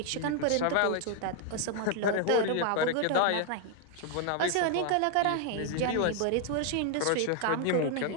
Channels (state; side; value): different; both; correlation 0.00